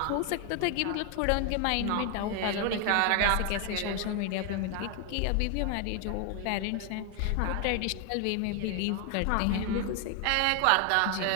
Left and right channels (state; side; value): different; both; correlation 0.01